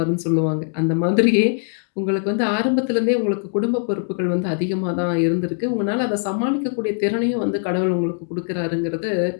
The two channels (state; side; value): silent; right; 62 dB below the other